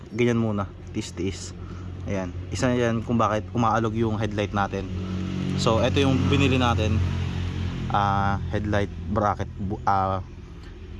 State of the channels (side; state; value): both; identical; correlation 1.00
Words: ganyan muna, tiis-tiis. Ayan, isa yan kung bakit umaalog yung headlight natin. So ito yung binili natin, headlight bracket,